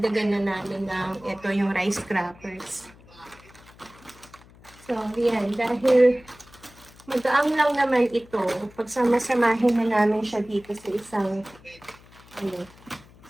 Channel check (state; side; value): noise; left; hum, 24 dB below the sound